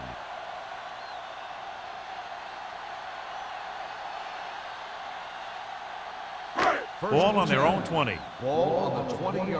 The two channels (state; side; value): identical; both; correlation 1.00